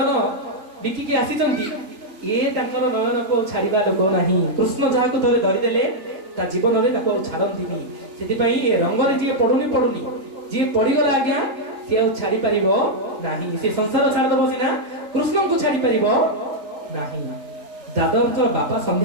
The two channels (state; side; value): late; left; 3.8 ms